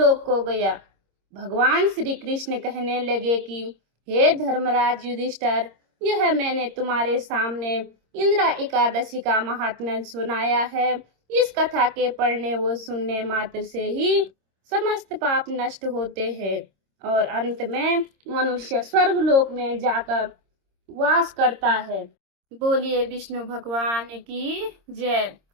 को गया। भगवान श्री कृष्ण कहने लगे कि हे धर्मराज युधिष्ठिर, यह मैंने तुम्हारे सामने इंदिरा एकादशी का महात्म्य सुनाया है। इस कथा के पढ़ने व सुनने मात्र से ही समस्त पाप नष्ट होते हैं और अंत में मनुष्य स्वर्ग लोक में जाकर वास करता है। बोलिए विष्णु भगवान की जय।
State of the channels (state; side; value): late; left; 26 ms